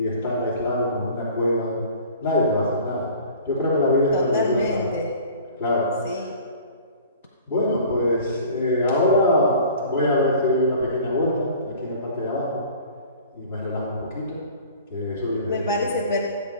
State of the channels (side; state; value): both; inverted; correlation -0.46